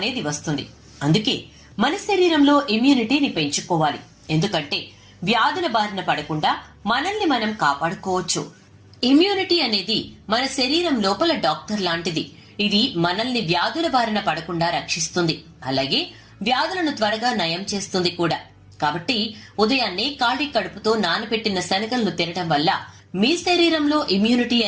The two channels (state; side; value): identical; both; correlation 1.00